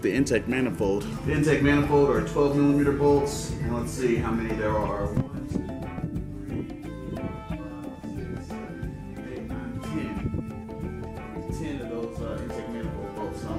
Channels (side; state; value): both; identical; correlation 1.00